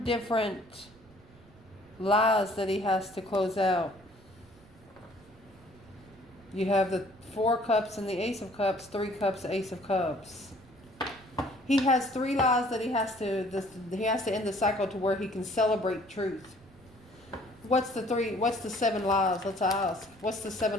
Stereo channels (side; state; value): right; noise; rumble, 25 dB below the sound